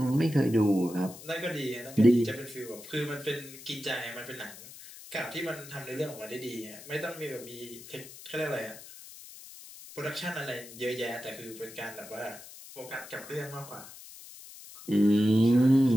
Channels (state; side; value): noise; left; hiss, 16 dB below the sound